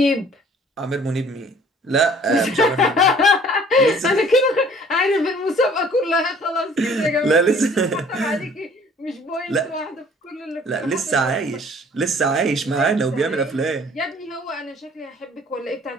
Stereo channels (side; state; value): both; normal; correlation 0.54